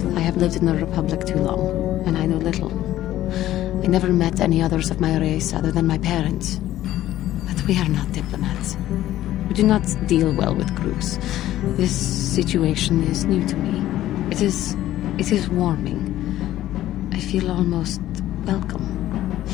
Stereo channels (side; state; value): right; quieter; 13.8 dB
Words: I have lived in the Republic too long, and I know little. I never met any others of my race other than my parents. But we are not diplomats. We do not deal well with groups. This situation is new to me. It is warming. I feel almost welcome.